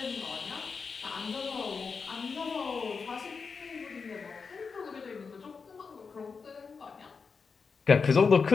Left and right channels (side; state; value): right; quieter; 5.2 dB